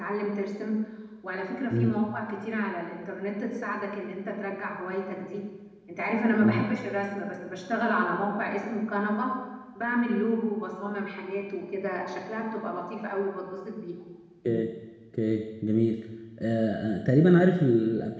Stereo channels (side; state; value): both; identical; correlation 1.00